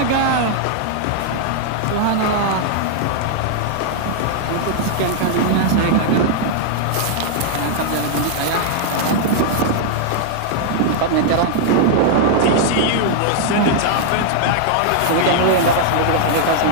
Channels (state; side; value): different; both; correlation -0.01